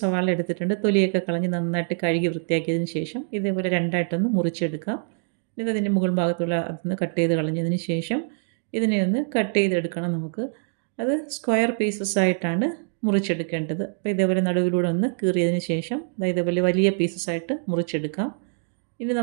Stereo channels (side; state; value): left; silent; 61 dB below the other